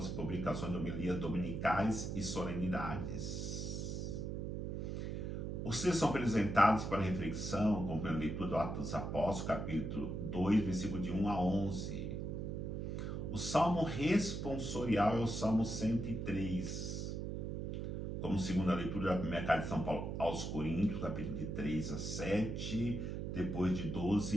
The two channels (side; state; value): right; noise; hum, 3 dB below the sound